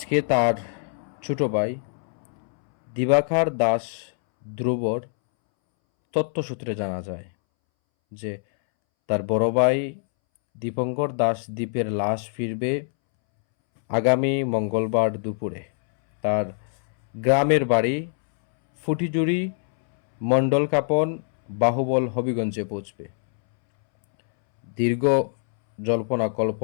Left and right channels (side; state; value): right; silent; 63 dB below the other